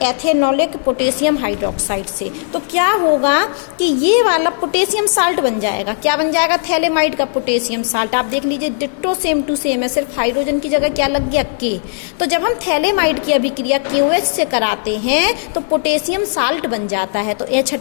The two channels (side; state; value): right; silent; digital silence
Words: एथेनॉलिक पोटेशियम हाइड्रोक्साइड से। तो क्या होगा कि ये वाला पोटेशियम साल्ट बन जाएगा। क्या बन जाएगा? थैलेमाइड का पोटेशियम साल्ट। आप देख लीजिए, डिट्टो सेम टू सेम है, सिर्फ हाइड्रोजन की जगह क्या लग गया? K। तो जब हम थैलेमाइड की अभिक्रिया KOH से कराते हैं तो पोटेशियम साल्ट बन जाता है। तो H